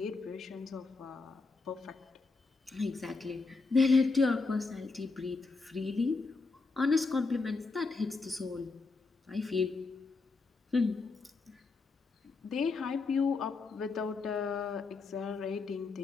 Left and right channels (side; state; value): right; quieter; 4.0 dB